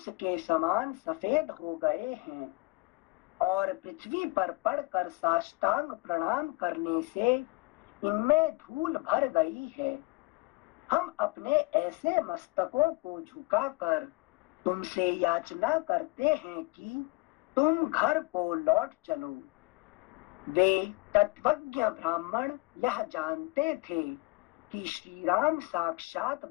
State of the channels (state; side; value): quieter; right; 24.9 dB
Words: के समान सफेद हो गए हैं और पृथ्वी पर पड़कर साष्टांग प्रणाम करने से इनमें धूल भर गई है। हम अपने ऐसे मस्तकों को झुकाकर तुमसे याचना करते हैं कि तुम घर को लौट चलो। वे तत्वज्ञ ब्राह्मण यह जानते थे कि श्री राम साक्षात